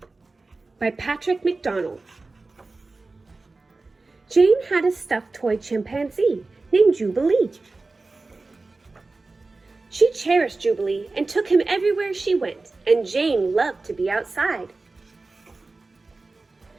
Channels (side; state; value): left; quieter; 3.6 dB